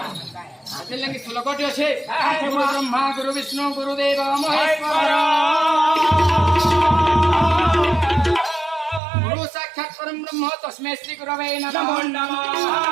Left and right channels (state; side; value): drops out; left; at 9.0 s